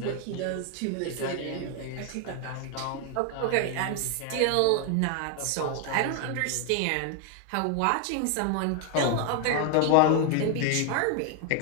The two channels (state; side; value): different; both; correlation 0.00